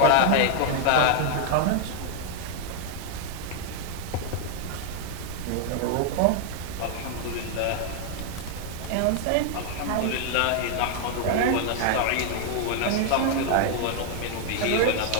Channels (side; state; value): both; different; correlation 0.00